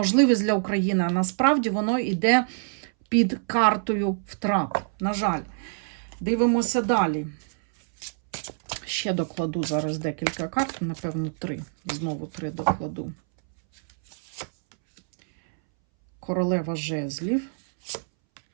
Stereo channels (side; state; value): left; silent; 61 dB below the other